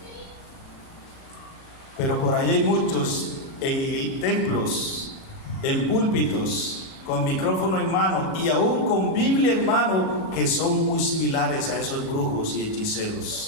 pero por ahí hay muchos en templos, en púlpitos, con micrófono en mano y aún con Biblia en mano, que son muy similares a esos brujos y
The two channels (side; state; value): right; late; 37 ms